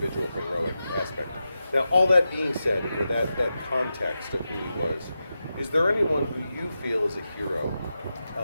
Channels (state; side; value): inverted; both; correlation -0.90